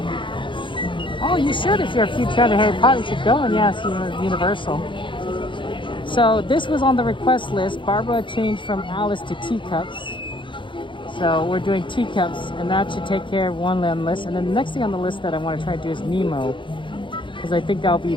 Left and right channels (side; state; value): right; late; 0.24 ms